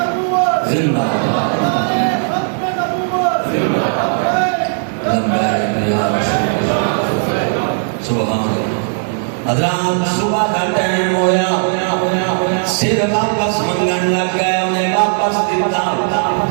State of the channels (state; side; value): silent; left; digital silence